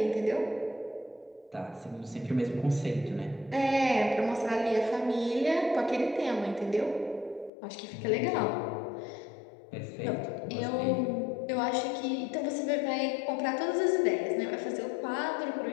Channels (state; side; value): drops out; right; at 7.5 s